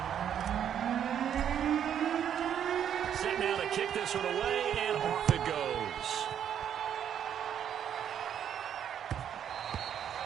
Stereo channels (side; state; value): left; quieter; 9.2 dB